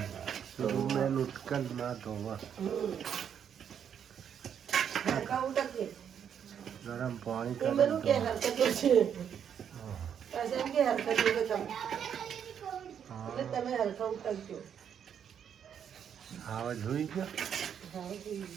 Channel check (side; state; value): left; quieter; 8.4 dB